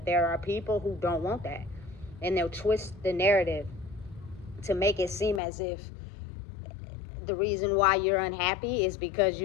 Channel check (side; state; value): right; drops out; at 5.4 s